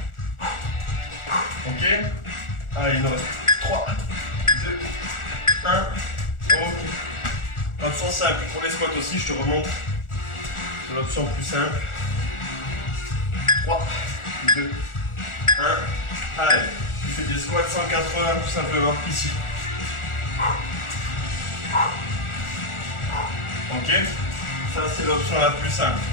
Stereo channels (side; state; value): right; late; 1.4 ms